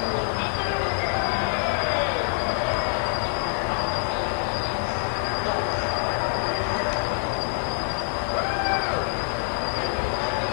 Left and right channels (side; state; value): right; silent; digital silence